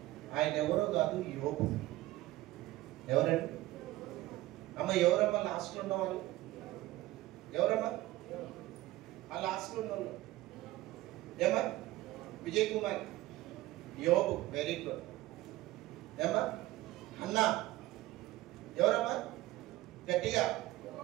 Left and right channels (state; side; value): quieter; left; 17.0 dB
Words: ఆయన ఎవరో కాదు, యోబు. ఎవరండి? అమ్మ ఎవరమ్మా లాస్ట్లో ఉన్న వాళ్ళు? ఎవరమ్మా ఆ లాస్ట్లో ఉన్న వాళ్ళు? ఏమా? విజయ్ కుమార్. యోబు, వెరీ గుడ్. ఏమా? అన్నా. ఎవరమ్మా? గట్టిగా.